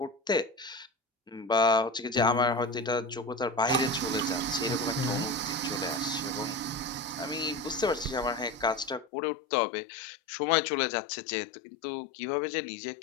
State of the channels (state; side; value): drops out; right; at 9.1 s